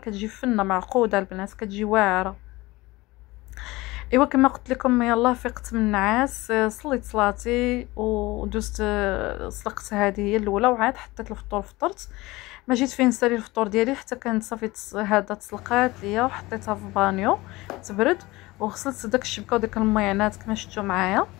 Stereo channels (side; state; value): right; quieter; 20.6 dB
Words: فنه معقوده البنات، كتجي واعره. ايوا كما قلت لكم يلا فقت من النعاس، صليت صلاتي ودوزت سلقت هذه هي الاولى، وعاد حطيت الفطور فطرت. ما جيت فين نسالي الفطور ديالي حتى كانت صافي هذا تسلقات ليا، وحطيتها في بانيو تبرد، وغسلت داك الشبكه وديك الميعنات كما شفتوا معايا.